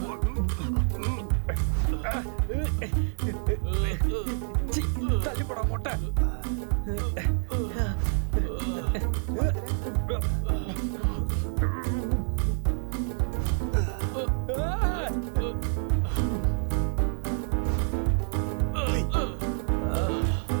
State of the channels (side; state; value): left; silent; 58 dB below the other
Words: சி, தள்ளி போடா மொட்டை.